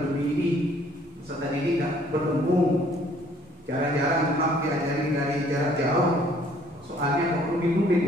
ini, peserta didik tidak bertemu, jarang-jarang memang diajari dari jarak jauh, soalnya kok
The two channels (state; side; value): normal; both; correlation 0.60